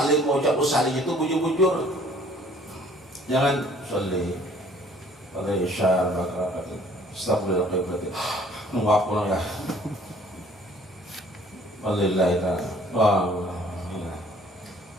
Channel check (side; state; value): both; normal; correlation 0.56